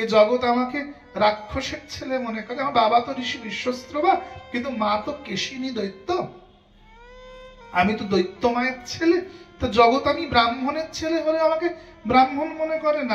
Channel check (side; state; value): both; identical; correlation 1.00